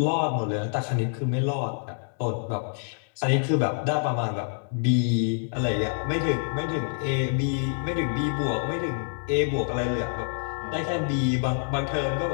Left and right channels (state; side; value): silent; right; 60 dB below the other